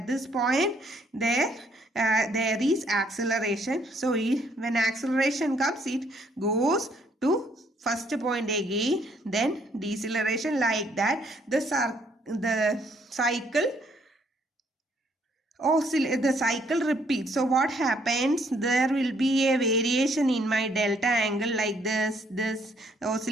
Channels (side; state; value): both; normal; correlation 0.67